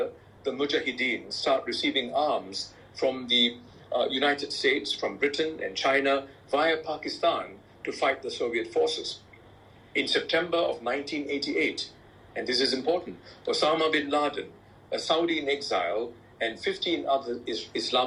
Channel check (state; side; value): identical; both; correlation 1.00